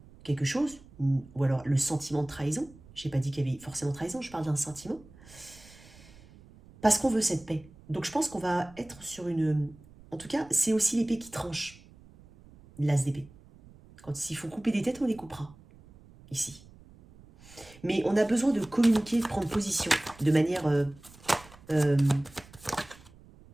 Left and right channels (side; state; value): right; noise; rumble, 23 dB below the sound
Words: quelque chose, ou alors le sentiment de trahison. Je n'ai pas dit qu'il y avait forcément trahison, je parle d'un sentiment. Parce qu'on veut cette paix. Donc je pense qu'on va être sur une... En tout cas, c'est aussi l'épée qui tranche, l'as d'épée. S'il faut couper des têtes, on les coupera. Ici. Mais on a besoin de communiquer, de prendre position de manière...